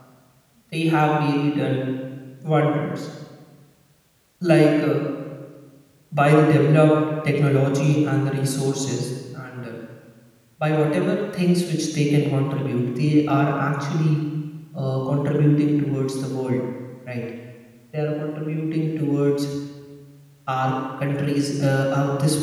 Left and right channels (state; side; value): identical; both; correlation 1.00